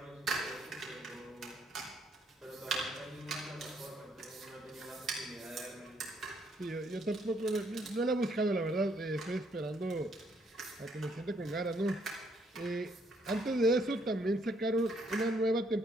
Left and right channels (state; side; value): normal; both; correlation 0.70